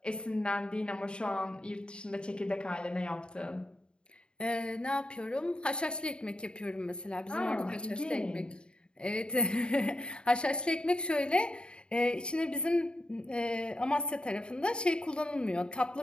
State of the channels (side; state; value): right; late; 0.051 ms